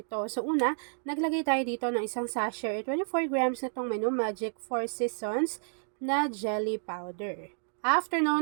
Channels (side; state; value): left; silent; 57 dB below the other